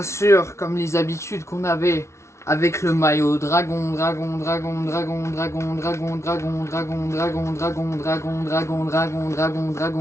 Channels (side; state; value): right; late; 0.13 ms